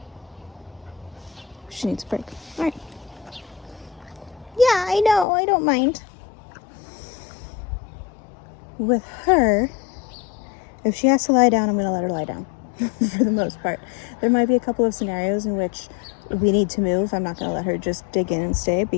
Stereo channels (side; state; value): right; drops out; at 5.2 s